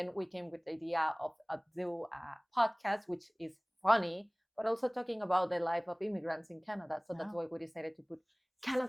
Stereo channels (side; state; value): both; identical; correlation 1.00